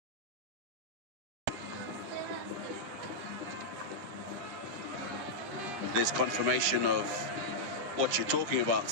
there's confirmation of what you're talking about,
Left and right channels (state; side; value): late; left; 10 ms